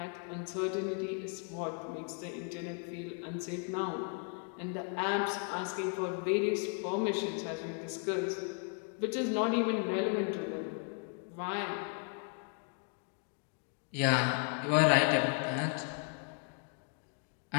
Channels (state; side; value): quieter; right; 38.4 dB